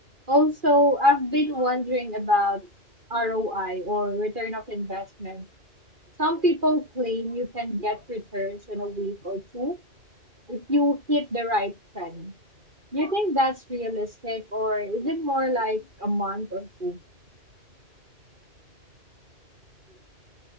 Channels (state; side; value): late; left; 2.4 ms